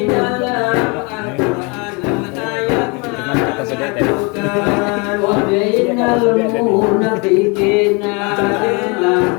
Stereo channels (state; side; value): quieter; right; 30.4 dB